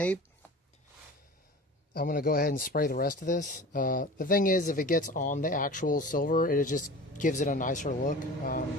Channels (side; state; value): both; normal; correlation 0.38